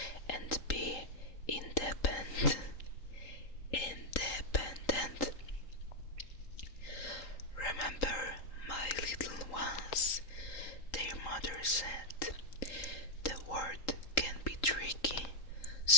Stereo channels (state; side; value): late; right; 3.8 ms